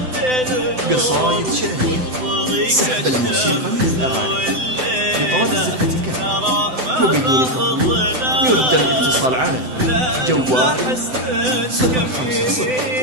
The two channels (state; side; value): late; left; 7.8 ms